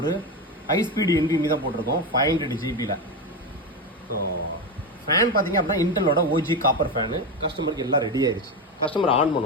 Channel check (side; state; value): both; normal; correlation 0.15